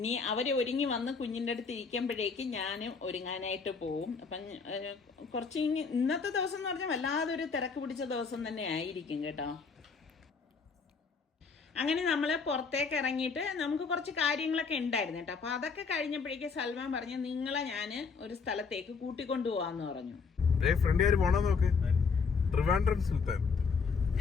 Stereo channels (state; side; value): quieter; right; 5.2 dB